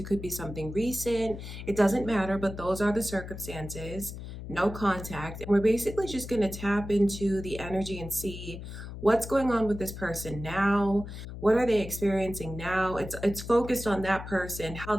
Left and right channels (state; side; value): noise; left; hum, 10 dB below the sound